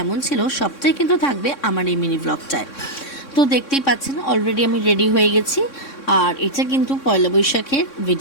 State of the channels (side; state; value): right; late; 3.6 ms